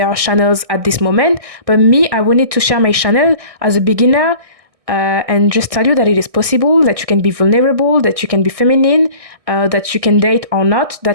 channels at this moment, but me, I wanted to share my channel as a beginner and just tell you that it is possible, that you can be vulnerable, that you can be feminine, that you can date or not.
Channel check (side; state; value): left; late; 1.6 ms